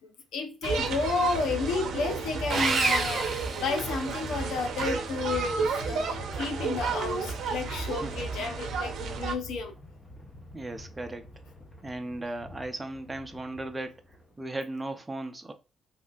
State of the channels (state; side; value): normal; both; correlation 0.68